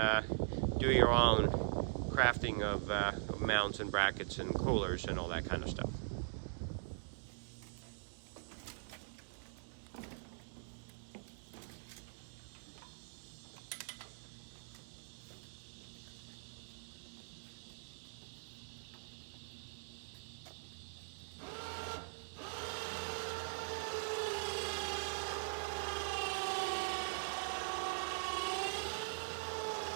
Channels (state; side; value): silent; left; digital silence